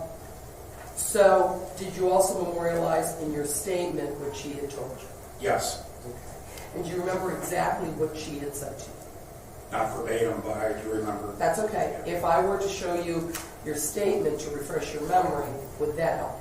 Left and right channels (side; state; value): both; identical; correlation 1.00